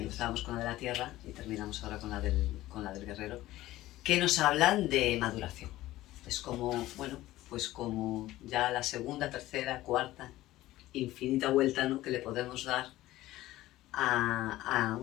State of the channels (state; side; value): quieter; right; 16.1 dB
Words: con la de la Tierra y terminamos ahora con la del Guerrero, que nos hablan de maduración. Es como, bueno, pues como ya la segunda, tercera, cuarta, infinita vuelta, ¿no?, que le podemos dar a